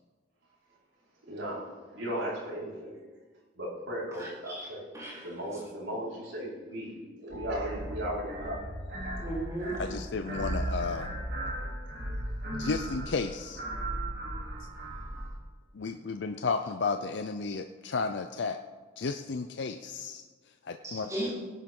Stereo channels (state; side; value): normal; both; correlation 0.15